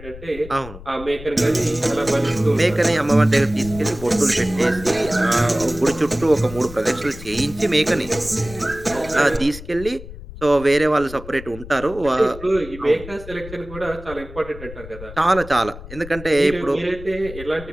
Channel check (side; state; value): left; noise; rumble, 15 dB below the sound